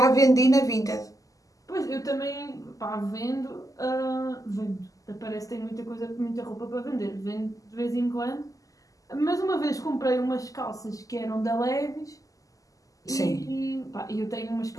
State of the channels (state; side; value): late; right; 0.17 ms